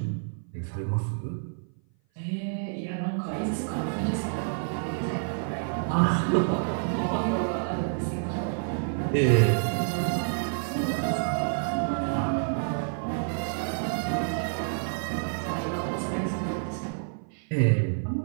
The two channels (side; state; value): left; silent; 56 dB below the other